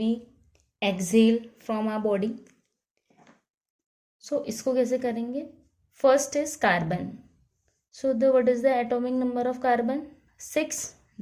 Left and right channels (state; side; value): identical; both; correlation 1.00